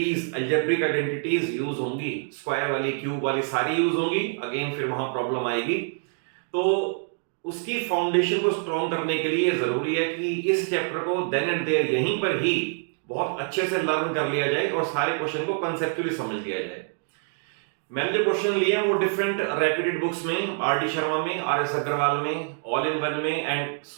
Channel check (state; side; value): silent; left; 61 dB below the other